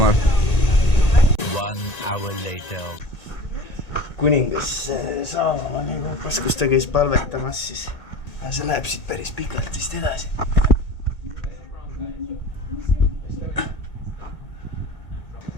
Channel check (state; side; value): late; right; 1.9 ms